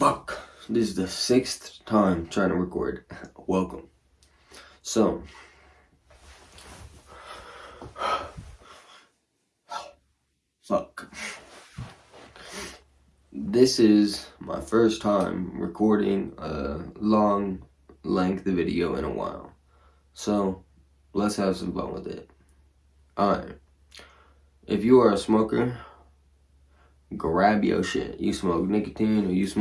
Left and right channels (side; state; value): both; identical; correlation 1.00